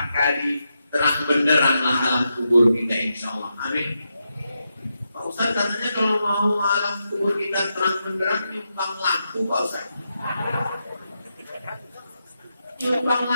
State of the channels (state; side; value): inverted; both; correlation -0.85